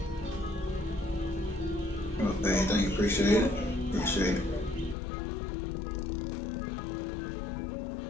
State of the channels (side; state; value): right; drops out; at 5.0 s